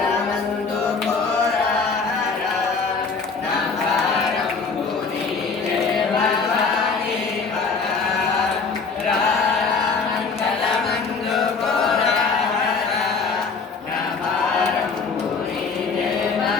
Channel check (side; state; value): right; quieter; 4.9 dB